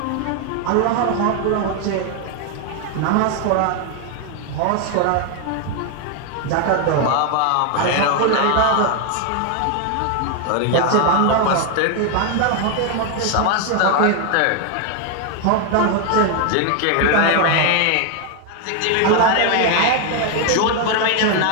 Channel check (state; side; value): different; both; correlation 0.01